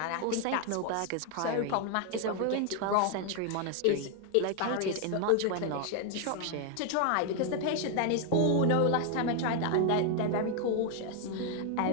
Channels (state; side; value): different; both; correlation 0.00